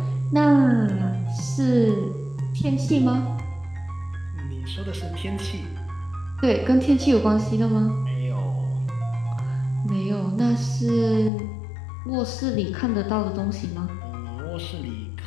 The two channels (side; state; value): right; drops out; at 11.3 s